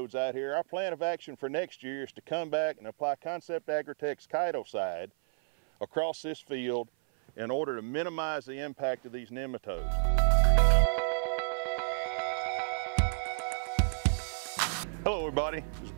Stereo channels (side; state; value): left; silent; 56 dB below the other